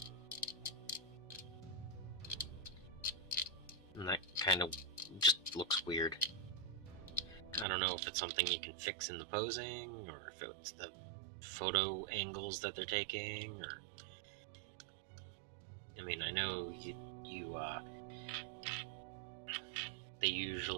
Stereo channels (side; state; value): left; drops out; at 7.7 s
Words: And that kind of just looks weird. I don't know if it's something you can fix in the posing, or if it's the photo angles that they're taking, or... I mean, I know they